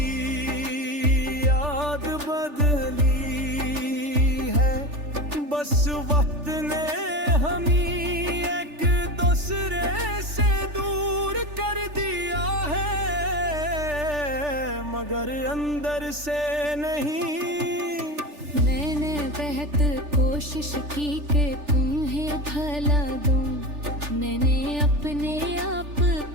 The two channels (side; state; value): left; late; 3.4 ms